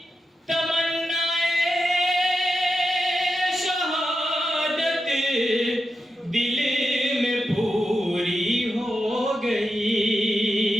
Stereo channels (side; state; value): both; normal; correlation 0.89